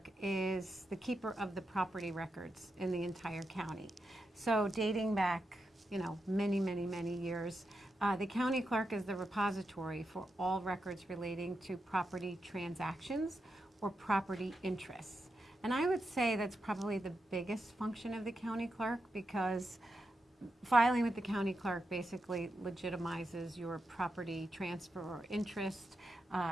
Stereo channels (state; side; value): normal; both; correlation 0.87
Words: is the keeper of the property records in the entire county. So dating back, many years, the county clerk is the repository for all records relating to property transactions or property interests. And I would say that's probably the biggest function of the county clerk, because filing with the county clerk basically legitimizes your property transfer or interest.